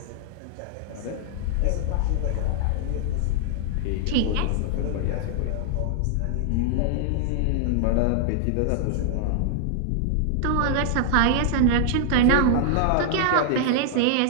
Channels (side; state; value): both; different; correlation -0.01